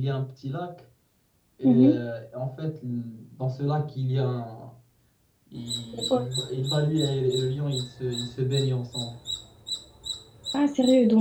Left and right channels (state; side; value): identical; both; correlation 1.00